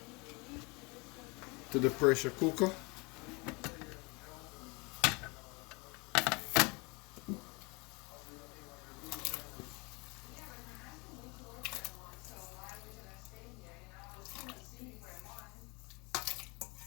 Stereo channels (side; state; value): right; quieter; 28.3 dB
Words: to the pressure cooker.